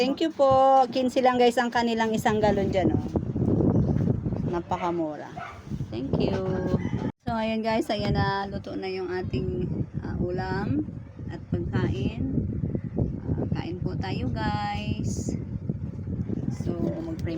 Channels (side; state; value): both; identical; correlation 1.00